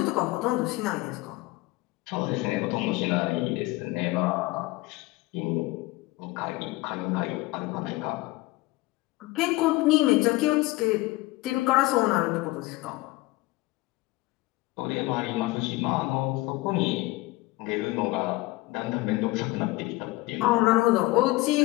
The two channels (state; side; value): quieter; right; 20.7 dB